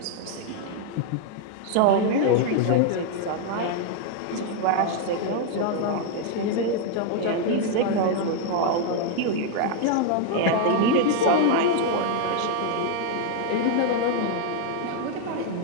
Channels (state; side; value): different; both; correlation 0.00